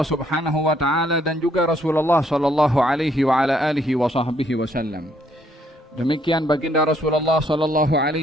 Subhanahu wa taala dan juga Rasulullah sallallahu alaihi wa ala alihi wa sahbihi wasallam. Demikian baginda Rasulullah sallallahu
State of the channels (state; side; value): normal; both; correlation 0.69